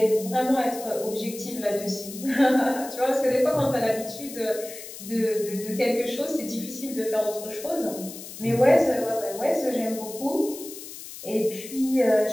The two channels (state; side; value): noise; left; hiss, 13 dB below the sound